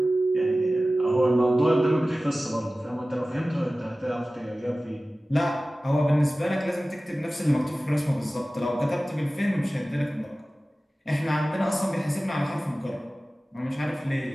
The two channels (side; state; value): both; normal; correlation 0.96